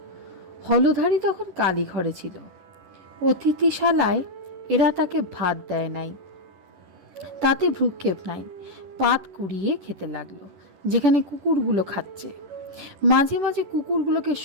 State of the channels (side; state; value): left; late; 10 ms